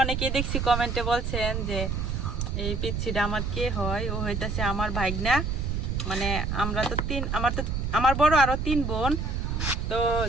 অনেকেই, দেখছি কমেন্টে বলছেন যে এই পিচ্ছিটা আমার কে হয়, ও হইতাছে আমার ভাইগনা। মানে আমরা তো আমার বড় আরো 3 বোন, তো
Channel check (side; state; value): right; noise; rumble, 1 dB below the sound